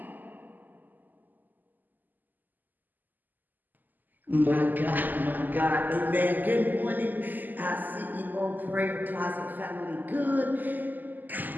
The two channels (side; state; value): left; late; 0.086 ms